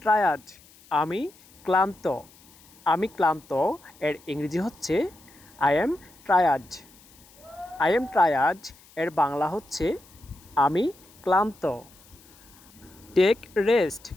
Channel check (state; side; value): noise; left; hiss, 26 dB below the sound